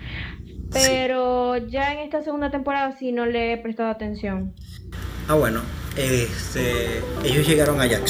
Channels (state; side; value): identical; both; correlation 1.00